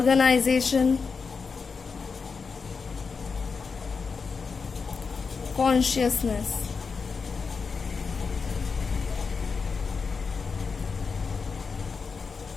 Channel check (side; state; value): right; quieter; 5.1 dB